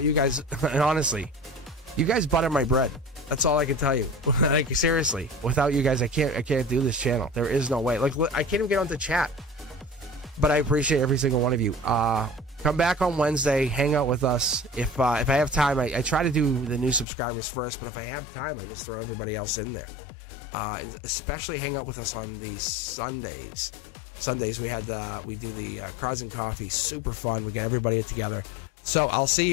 you guys, and honestly, you guys butter my bread. That's all I can tell you. Like, seriously, without you guys, I can't do this channel. There is no way. Like, I can't even get onto chat. But I appreciate every single one of you. Come back on Wednesday, hang out with us. If I have time, I try to do the new subscribers first, but if I have time, I just throw everybody else in there. Especially hang out with us on these Sundays. Sundays we do the Cards and Coffee. Super fun. We get everybody together. So I'll see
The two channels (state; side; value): drops out; right; at 17.1 s